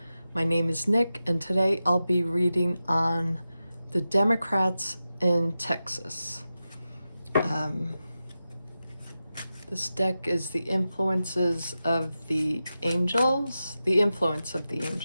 My name is Nick, and today I'll be reading on the Democrats in Texas. This deck is the influences of the angels, the influence of the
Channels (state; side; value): inverted; both; correlation -0.92